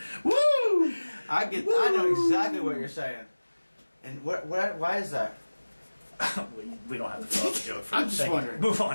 Woo! I know exactly what you're saying. And why is that? We don't have to fill out the joke for I'm just Thank you. wondering. Move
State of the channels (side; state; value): both; inverted; correlation -1.00